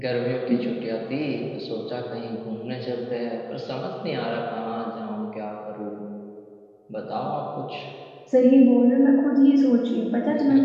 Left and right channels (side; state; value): both; identical; correlation 1.00